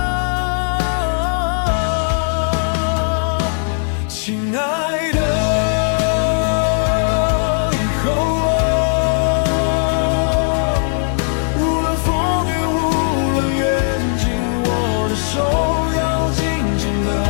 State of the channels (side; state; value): right; silent; 67 dB below the other